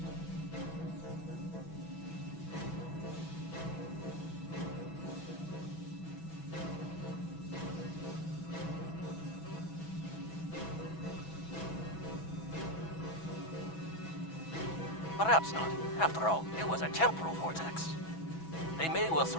Perhaps not. After all, it was a temporal vortex. They may well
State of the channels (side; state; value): right; late; 6.1 ms